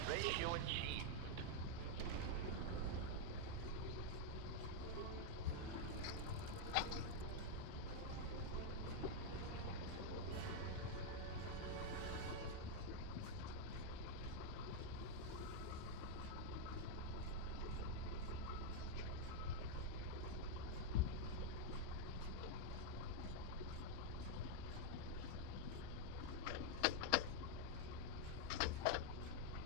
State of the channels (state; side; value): different; both; correlation 0.00